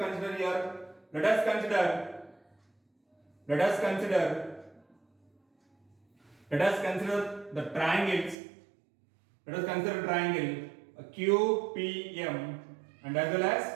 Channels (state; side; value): drops out; left; at 8.3 s